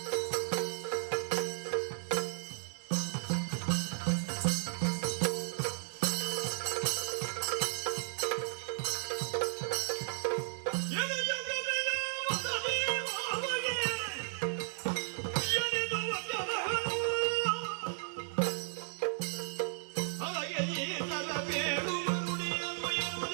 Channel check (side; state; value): left; silent; digital silence